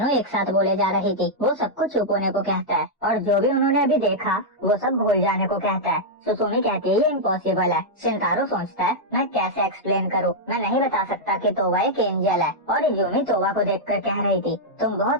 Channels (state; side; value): normal; both; correlation -0.05